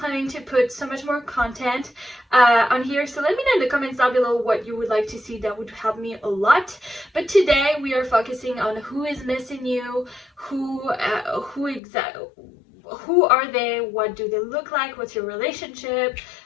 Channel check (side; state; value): right; drops out; at 11.8 s